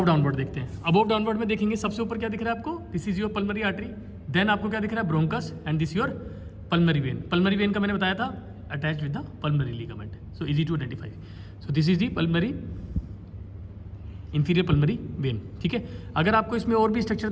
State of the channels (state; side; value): identical; both; correlation 1.00